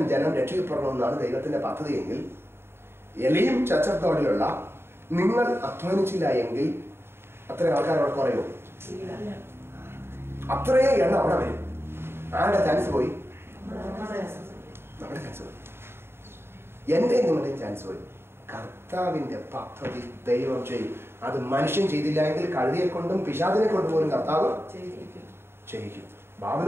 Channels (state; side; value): late; left; 0.11 ms